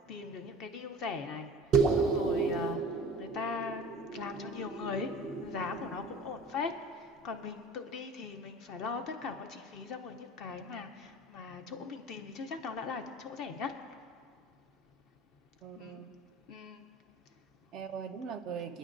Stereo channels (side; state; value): both; normal; correlation 0.42